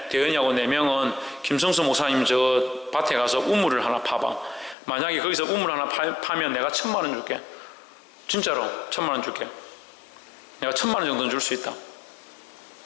대현이하고 4명은 김성수 목사님 저 밭에 가서 우물을 하나 파봐. 만약에 거기서 우물 하나 파면 내가 1,000,000원 줄게. 진짜로 1,000,000원 줄게. 내가 1,000,000원 정도는 줄 수 있다.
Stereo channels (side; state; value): right; drops out; at 4.8 s